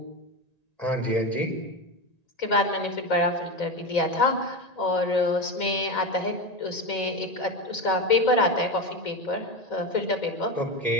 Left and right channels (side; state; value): right; late; 1.9 ms